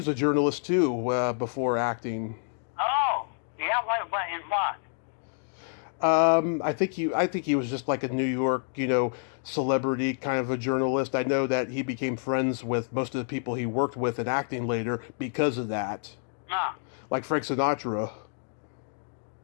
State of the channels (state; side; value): silent; right; digital silence